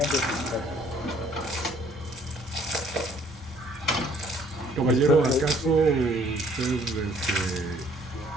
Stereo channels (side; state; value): both; normal; correlation 0.60